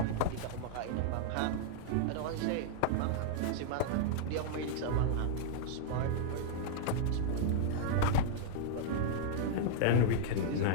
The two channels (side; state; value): both; different; correlation -0.02